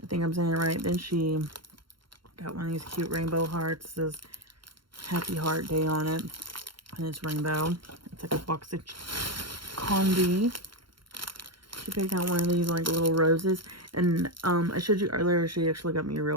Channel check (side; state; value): left; late; 0.73 ms